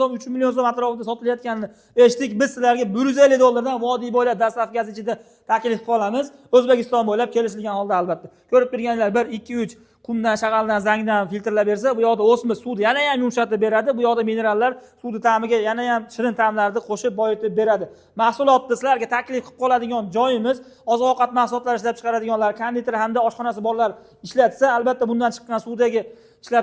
3 million so'm atrofida sotilayotganini eshitdik. Biz sizlarga $150 dan vodiy bo'ylab dastavkasi ichida taklif qilib qolamiz. O'zbekiston bo'ylab kelishilgan holda albatta. Ko'rib turganlar 1, 2, 3 qumdan, shag'aldan, zangdan filtrlab bersa, bu yoqda o'sma suvni yana ham yumshatib beradi. Bu yoqda minerallar suvni ta'miga yana ham shirin ta'mlarni qo'shib boyitib beradi. Mahsulotni sizlarga taklif qilib qoladigan joyimiz oziq-ovqat mahsulotlari ishlab chiqaradiganlar, konditer hamda oshxonasi borlar ishlatsa, albatta bundan chiqqan suvdagi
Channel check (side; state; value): both; identical; correlation 1.00